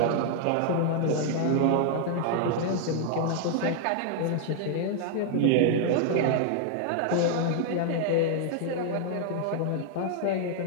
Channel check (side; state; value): both; different; correlation 0.00